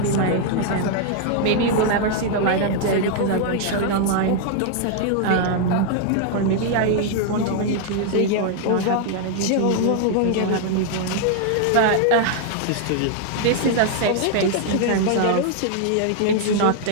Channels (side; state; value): both; different; correlation 0.00